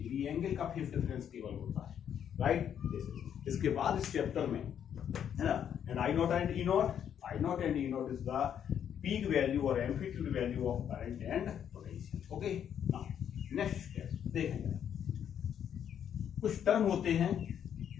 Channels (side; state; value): right; quieter; 9.0 dB